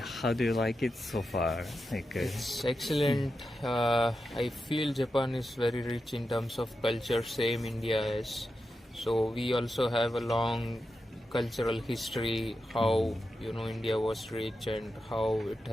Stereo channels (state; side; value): normal; both; correlation 0.89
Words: how do you like it so far? It's excellent. I feel Japan is very rich in terms of culture, same India is. So we also have a long cultural history, how India was rich and how it